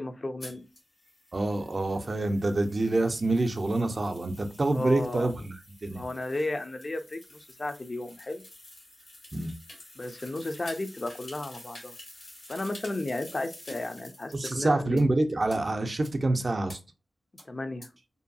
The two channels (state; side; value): normal; both; correlation 0.95